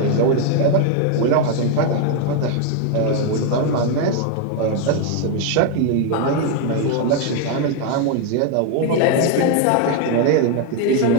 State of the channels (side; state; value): both; different; correlation 0.01